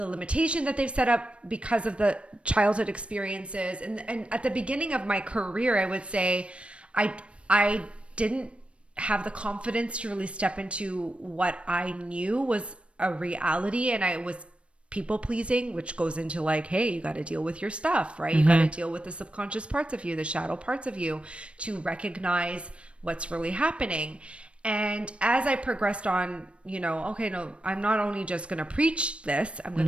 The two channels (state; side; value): late; left; 0.060 ms